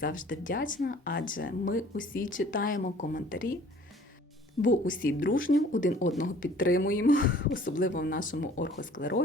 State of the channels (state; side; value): normal; both; correlation 0.52